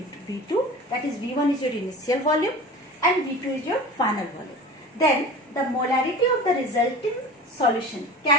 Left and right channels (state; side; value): normal; both; correlation 0.36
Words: V2, that is V1 is your initial volume and V2 is your final volume, then the molarity of the resulting solution